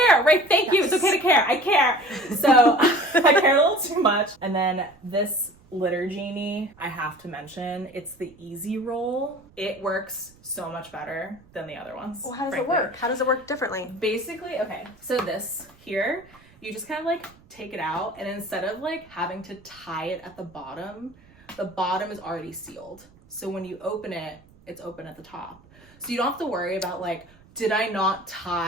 right? Thank you. It's okay to care. I care. So I care a little too much. And then this litter genie, I have to mention, it's the easy roll. It works so much better than the other ones. Well, how does frankly. it work? How does it work differently? Basically, okay, so this here, you just kind of like take it out, and instead of like having to tie it at the bottom is already sealed. So when you open it, it's open at the top. So you don't have to worry about like, did I not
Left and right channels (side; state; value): right; noise; rumble, 27 dB below the sound